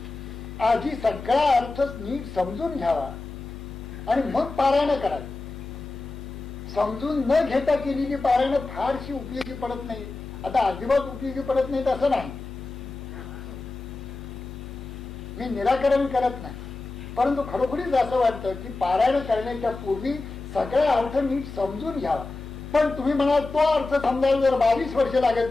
आधी सगळा अर्थ नीट समजून घ्यावा आणि मग पारायण करावी. समजून न घेता केलेली पारायण फारशी उपयोगी पडत नाही. आता अजिबात उपयोगी पडत नाहीत असं नाही. मी निराकरण करत नाही, परंतु खरोखरीच असं वाटतं की पारायण करण्याच्या पूर्वी सगळा अर्थ नीट समजून घ्यावा. पण तुम्ही म्हणाल तो अर्थ समजायला जर 22 वर्ष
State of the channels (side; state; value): right; quieter; 3.4 dB